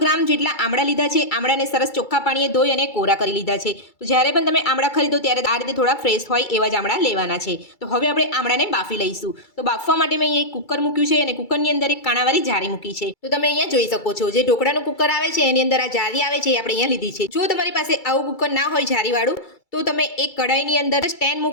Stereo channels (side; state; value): right; late; 2.3 ms